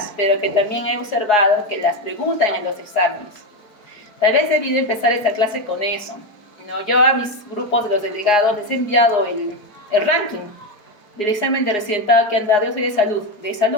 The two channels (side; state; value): right; late; 4.8 ms